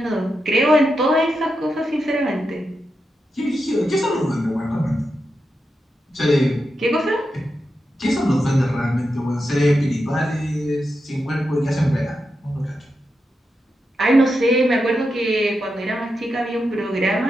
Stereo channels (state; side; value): normal; both; correlation 0.87